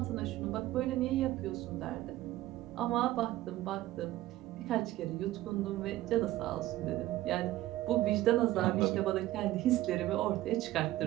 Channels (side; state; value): left; quieter; 15.7 dB